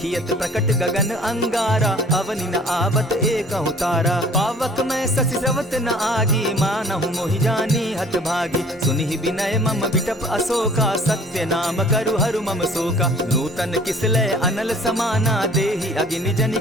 प्रकट गगन अंगारा, अवनि न आवत एकहु तारा। पावक मैं शशि स्रवत न आगी, मानहु मोहि जानी हत भागी। सुनिहि विनय मम विटप अशोका, सत्य नाम करु हरु मम शोका। नूतन किसलय अनल समाना, देहि अगिनि जनि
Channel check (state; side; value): normal; both; correlation 0.52